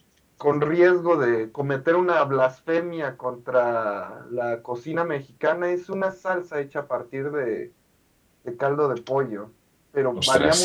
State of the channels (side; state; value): both; identical; correlation 1.00